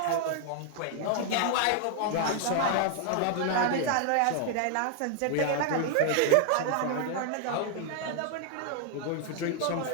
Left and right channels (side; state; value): both; different; correlation 0.00